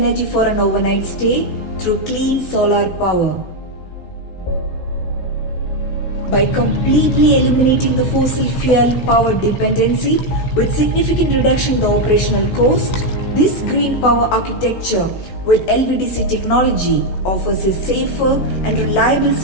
for an overnight stay through clean solar power. By completely eliminating the fossil fuel power dependency with significant reduction in the operational cost, this green power architecture with LVDC technology offers a safer and reliable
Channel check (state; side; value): late; right; 16 ms